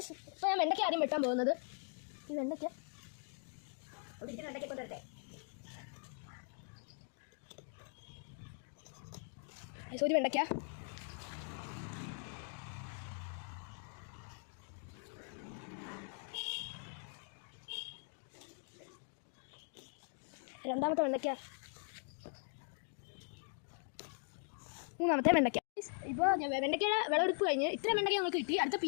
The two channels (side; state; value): right; silent; 51 dB below the other